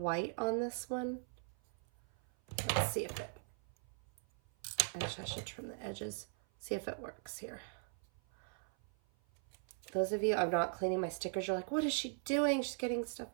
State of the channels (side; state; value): left; silent; 51 dB below the other